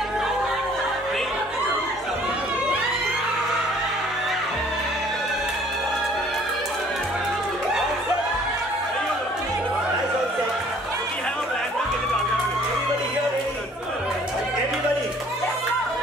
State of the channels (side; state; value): both; normal; correlation 0.56